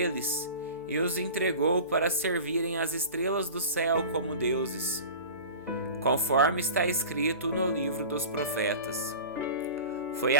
e os entregou para servirem as estrelas do céu como deuses, conforme está escrito no livro dos profetas. Foi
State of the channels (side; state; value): both; inverted; correlation -0.36